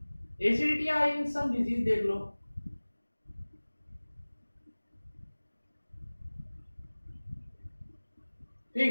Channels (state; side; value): inverted; both; correlation -1.00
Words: acidity या इन सम डिजीज, देख लो।